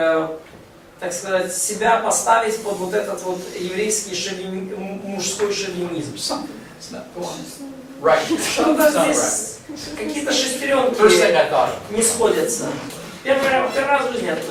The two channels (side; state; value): both; identical; correlation 1.00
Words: так сказать, себя поставить под вот этот вот еврейский мужской шовинизм. It's not going right. Что-то It's not right. здесь, какие-то First thing шестеренки I thought of. не сходятся. Первый раз в жизни я